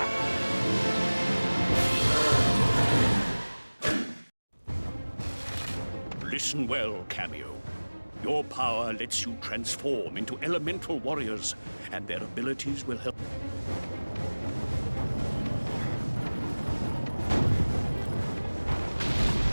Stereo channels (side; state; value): both; inverted; correlation -1.00